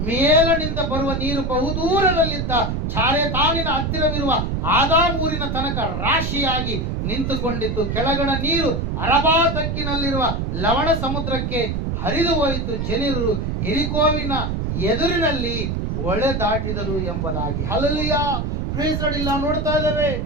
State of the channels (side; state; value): right; noise; rumble, 1 dB below the sound